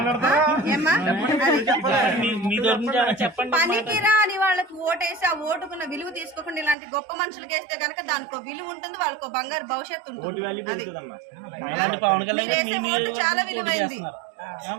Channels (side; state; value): left; drops out; at 6.8 s